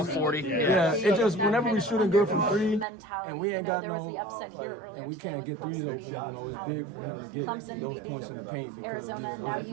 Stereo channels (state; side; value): drops out; left; at 2.9 s